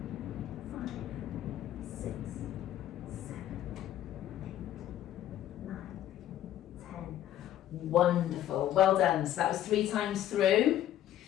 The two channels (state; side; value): quieter; right; 12.2 dB